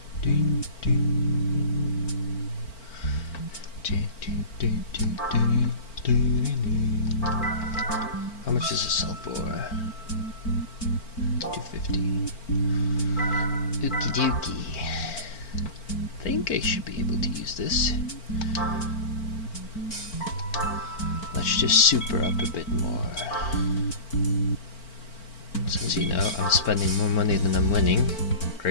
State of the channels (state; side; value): late; right; 4.4 ms